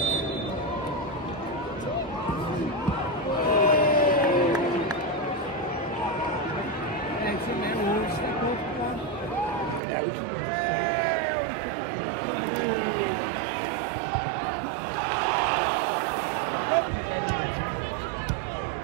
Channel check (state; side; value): drops out; left; at 9.8 s